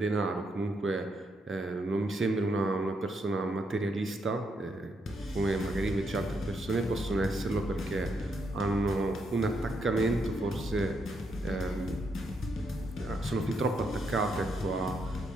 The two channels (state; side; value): normal; both; correlation 0.78